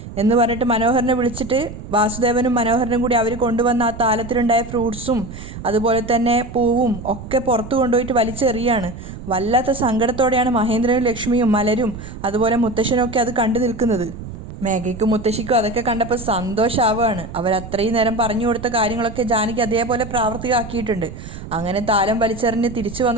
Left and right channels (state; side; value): noise; right; rumble, 12 dB below the sound